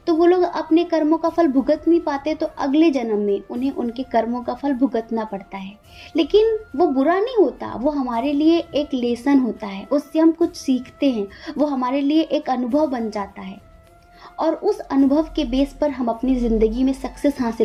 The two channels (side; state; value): both; identical; correlation 1.00